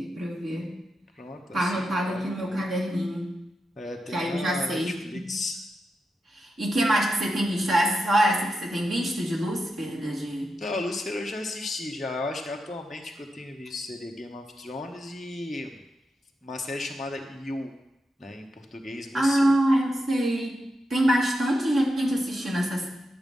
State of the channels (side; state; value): both; normal; correlation 0.87